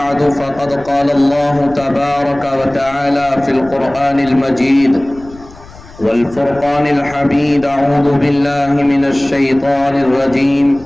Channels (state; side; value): noise; left; rumble, 20 dB below the sound